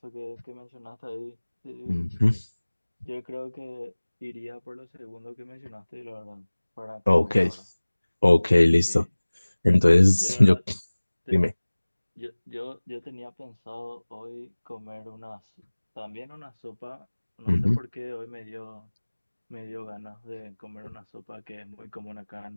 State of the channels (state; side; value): inverted; both; correlation -1.00